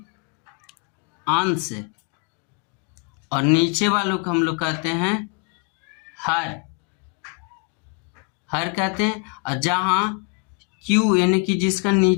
अंश और नीचे वालों को हम लोग कहते हैं हर कहते हैं। और जहां Q यानी कि जिसका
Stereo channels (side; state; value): right; quieter; 33.0 dB